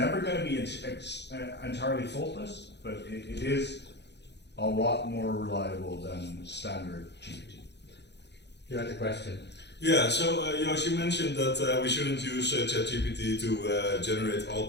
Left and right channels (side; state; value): right; late; 0.50 ms